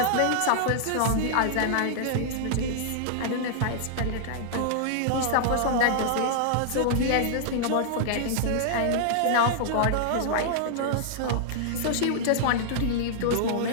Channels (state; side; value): different; both; correlation -0.01